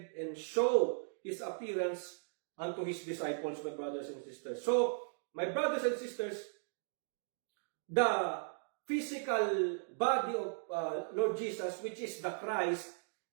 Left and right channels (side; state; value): left; silent; digital silence